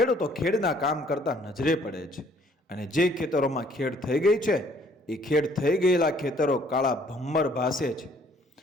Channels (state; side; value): normal; both; correlation 0.61